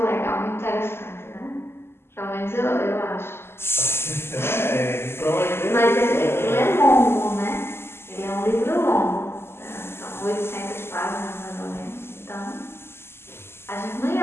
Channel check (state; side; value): late; right; 0.12 ms